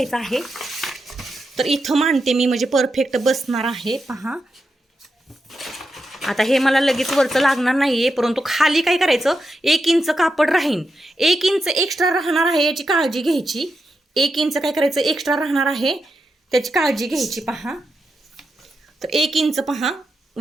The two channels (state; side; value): normal; both; correlation 0.87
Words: आहे. तर इथं मांडते मी म्हणजे परफेक्ट बसणार आहे. पहा आता हे मला लगेच वरचं लागणार नाहीये परंतु खाली काय करायचं, 1 इंच कापड राहीन, 1 इंच एक्स्ट्रा राहणार आहे याची काळजी घ्यायची. 1 इंच काय करायचं एक्स्ट्रा राहणार आहे त्याची काळजी घ्यायची. पहा तर 1 इंच पहा